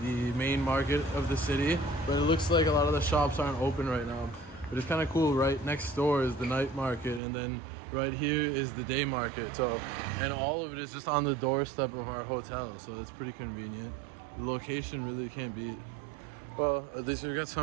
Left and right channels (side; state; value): left; drops out; at 7.2 s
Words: the main market of the city, but it looks like a lot of the shops aren't open right now. But it's kind of cool. Right next door is the night market, and then right here is the day market. So, and all of it is just on the doorstep of our hotel, so it's pretty convenient. The location really can't beat. Well, at least we've got